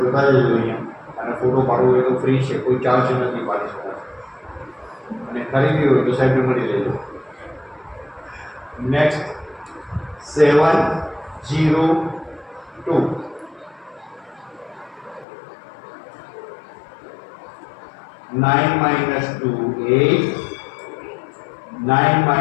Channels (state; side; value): drops out; right; at 15.2 s